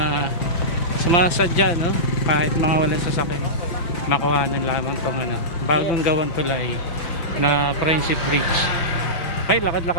sumasadya, kahit mga walang sasakyan, makuhanan lamang tong bagong gawang tulay na Friendship Bridge. Okay,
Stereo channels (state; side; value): late; right; 6.0 ms